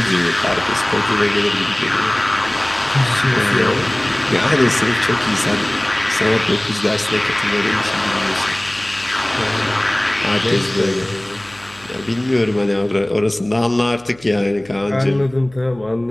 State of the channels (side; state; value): left; noise; hum, 26 dB below the sound